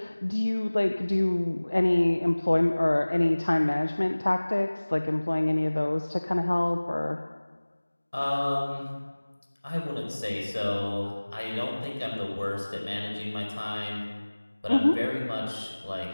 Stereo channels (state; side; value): inverted; both; correlation -1.00